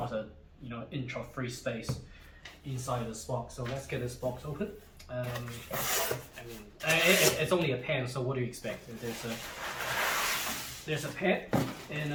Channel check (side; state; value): both; identical; correlation 1.00